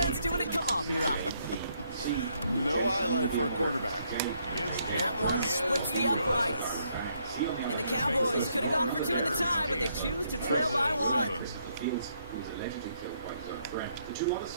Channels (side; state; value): both; inverted; correlation -0.73